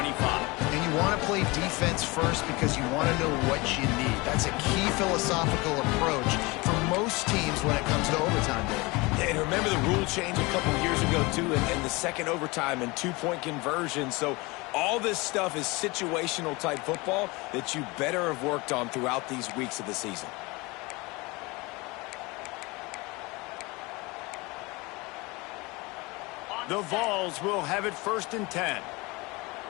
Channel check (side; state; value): right; quieter; 24.5 dB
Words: And you want to play defense first because you want to know what you need. That's a key philosophical approach for most teams when it comes to overtime, Dave. Yeah, and remember the rule change a couple years ago, too, and the second overtime and two-point conversion. So all this stuff is situational type football that you better have worked on throughout these weeks of the season. The Vols will have it 1st and 10.